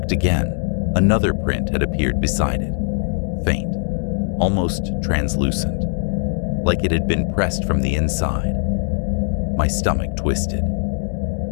again, another print had appeared beside it. Faint, almost translucent, like it had been pressed from the inside. My stomach twisted.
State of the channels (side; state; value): right; silent; digital silence